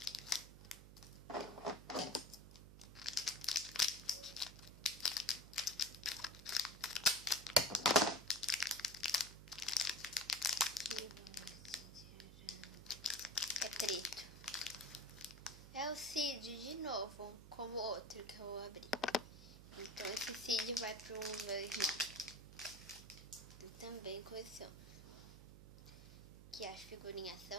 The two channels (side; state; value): right; noise; hum, 15 dB below the sound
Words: É preto. É o Cid de novo, como o outro que eu vou abrir. Então esse Cid vai pro meu irmão. Ele também coleciona. Que as figurinhas